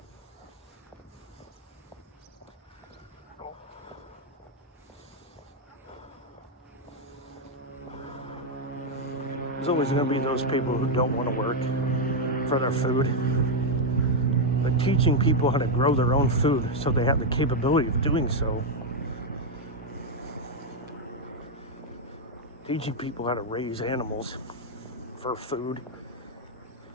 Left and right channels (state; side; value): normal; both; correlation 0.01